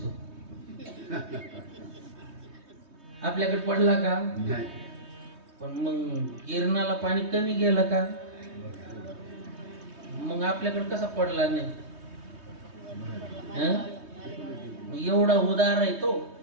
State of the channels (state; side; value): late; left; 3.2 ms